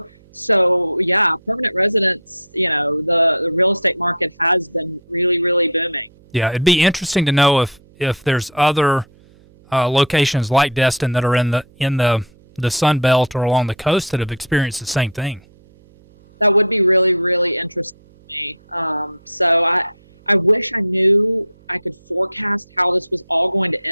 so yeah, permanent residents, you know, the real estate market has been really, really booming. Yeah. It'd be interesting to know if there's other locations like Destin that are in the Sun Belt or along the coast that have experienced the same thing. That would be really, really interesting to me. So I wish I knew I could forecast how this was all going to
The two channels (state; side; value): noise; right; hum, 28 dB below the sound